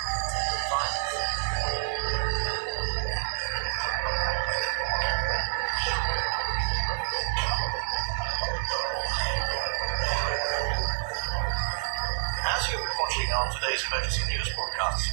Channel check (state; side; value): silent; left; digital silence